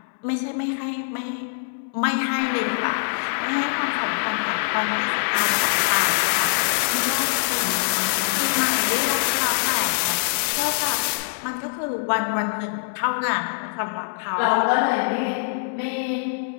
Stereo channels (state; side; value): silent; right; 63 dB below the other